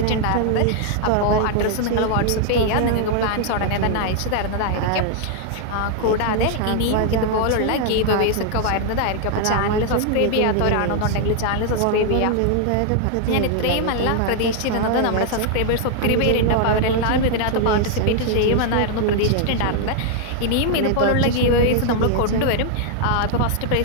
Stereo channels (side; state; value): both; different; correlation 0.00